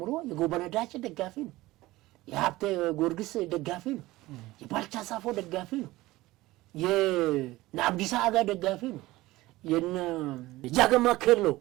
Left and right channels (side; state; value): left; quieter; 18.4 dB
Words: የጎበነዳጭ ደጋፊ ነው፣ የሀብቴ ጊዮርጊስ ደጋፊ ነው፣ የባልቻ ሳፎ ደጋፊ ነው፣ የአብዲሳ አጋ ደጋፊ ነው፣ የጃገማ ኬሎ